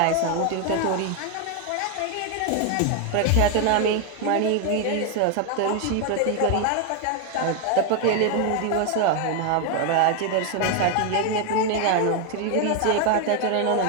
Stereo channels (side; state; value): both; different; correlation 0.01